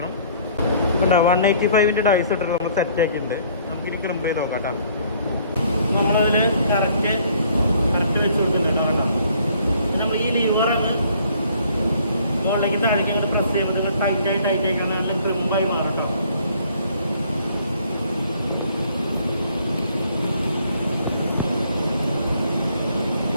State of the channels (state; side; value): inverted; both; correlation -0.60